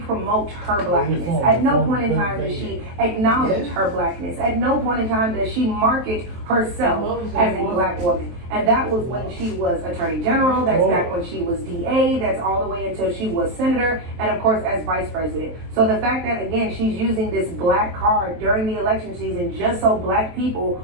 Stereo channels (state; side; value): late; left; 23 ms